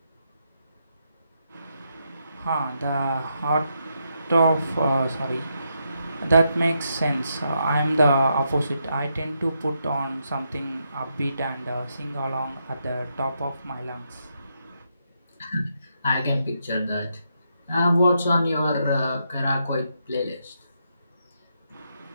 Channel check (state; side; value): inverted; both; correlation -0.80